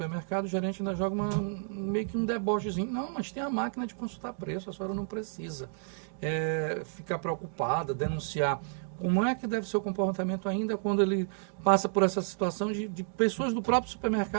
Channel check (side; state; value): left; silent; digital silence